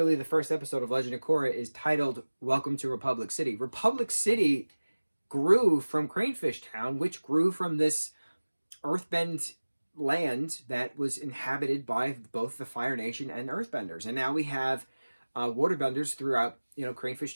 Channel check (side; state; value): both; inverted; correlation -1.00